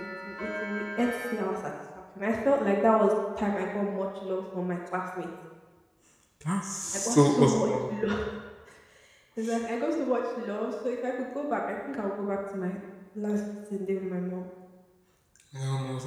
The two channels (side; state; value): both; identical; correlation 1.00